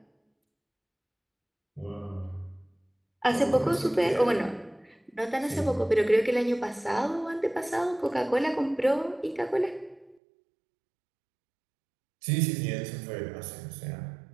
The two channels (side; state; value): left; drops out; at 10.2 s